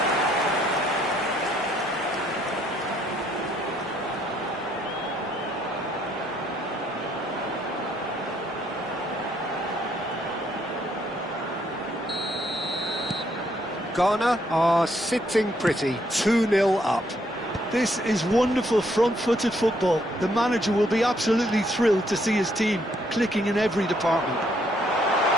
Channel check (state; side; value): normal; both; correlation 0.70